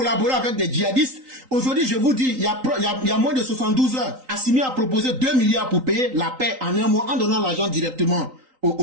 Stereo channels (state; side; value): late; left; 3.8 ms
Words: avec des djihadistes. Aujourd'hui, je vous dis, il y a moins de 72 heures, Assimi a proposé 2 milliards pour payer la paix en un mois en donnant l'argent directement